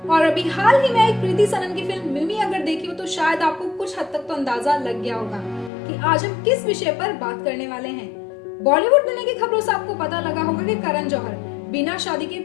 और अभी हाल ही में एक प्रीति सनन की फिल्म मिमी अगर देखी हो तो शायद आपको कुछ हद तक तो अंदाजा लग गया होगा कि आज हम किस विषय पर बात करने वाले हैं। बॉलीवुड दुनिया की खबरों से आपको पता लगा होगा कि करण जौहर बिना शादी के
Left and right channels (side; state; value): right; drops out; at 5.7 s